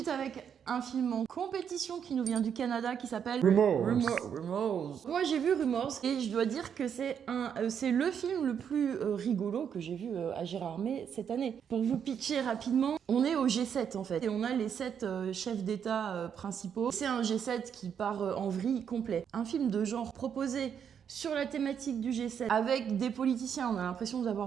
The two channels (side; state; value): left; quieter; 7.9 dB